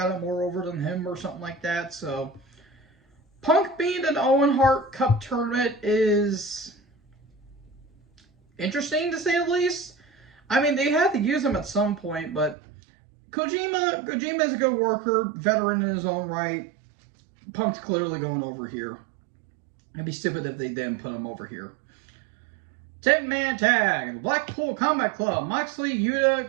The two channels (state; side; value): drops out; left; at 12.6 s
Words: it more over than him or something like that. So, Punk being an Owen Hart Cup tournament is interesting, to say the least. I mean, they had to use him at some point, but Kojima is a good worker, veteran in his own right. Punk's clearly going over here. It'd be stupid if they didn't put him over here. 10-man tag. Blackpool Combat Club. Moxley,